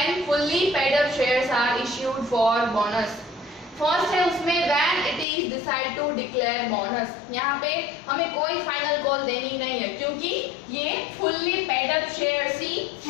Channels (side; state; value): right; drops out; at 5.2 s